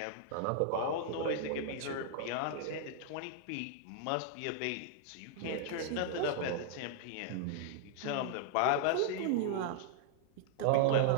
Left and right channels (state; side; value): different; both; correlation -0.01